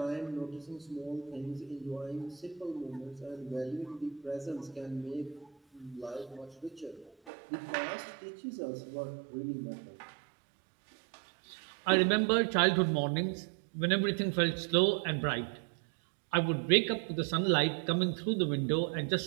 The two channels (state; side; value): drops out; left; at 7.3 s